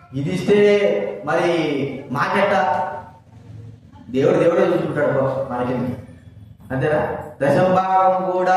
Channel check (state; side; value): identical; both; correlation 1.00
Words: ఇది ఇస్తే మరి మాకెట్ట? దేవుడే చూసుకుంటాడు మనకి, అంతేనా? దశమ భాగం